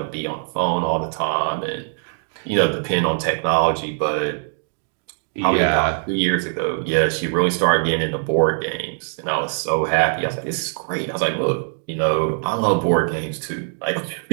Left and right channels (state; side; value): silent; left; digital silence